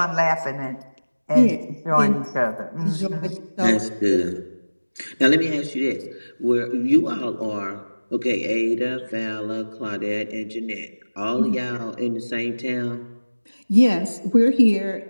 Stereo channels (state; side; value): inverted; both; correlation -1.00